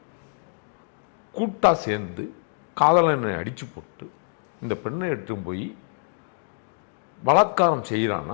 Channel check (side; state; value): right; silent; digital silence